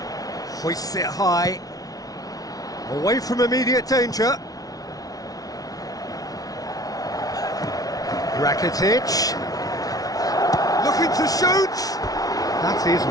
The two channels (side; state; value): right; late; 0.18 ms